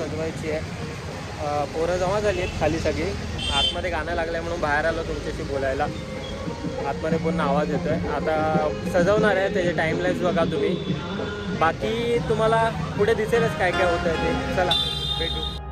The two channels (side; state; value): both; identical; correlation 1.00